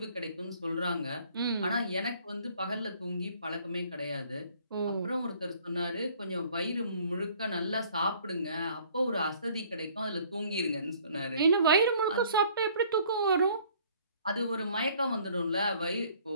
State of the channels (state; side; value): inverted; both; correlation -0.57